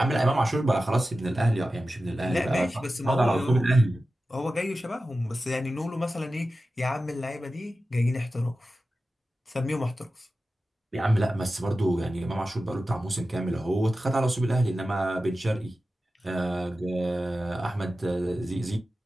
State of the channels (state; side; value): normal; both; correlation 0.94